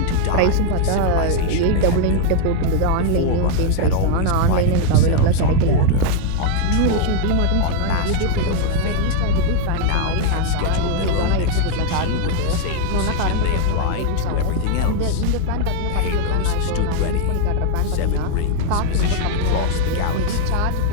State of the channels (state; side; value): different; both; correlation 0.00